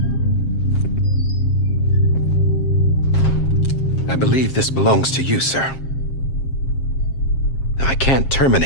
I believe this belongs to you, sir. I can't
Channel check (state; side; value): late; right; 7.5 ms